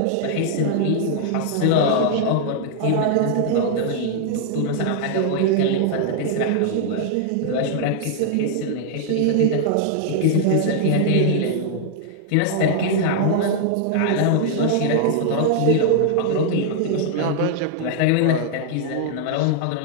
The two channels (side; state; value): both; different; correlation -0.01